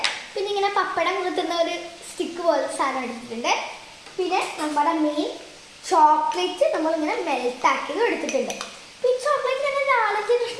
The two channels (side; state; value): both; identical; correlation 1.00